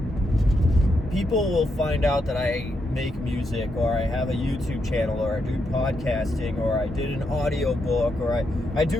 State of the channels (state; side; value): normal; both; correlation 0.81